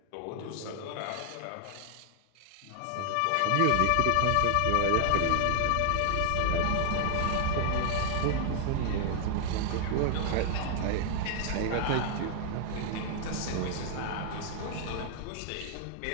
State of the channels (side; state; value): both; different; correlation 0.00